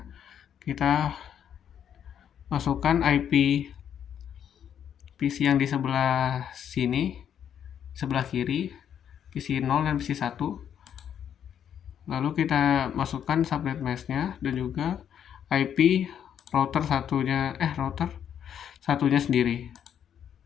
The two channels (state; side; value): quieter; right; 9.0 dB